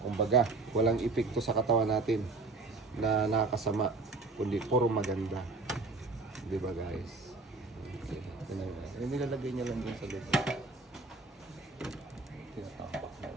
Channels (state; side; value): quieter; left; 3.7 dB